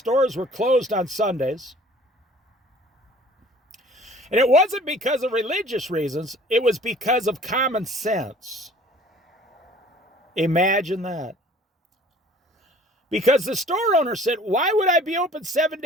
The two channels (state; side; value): normal; both; correlation 0.51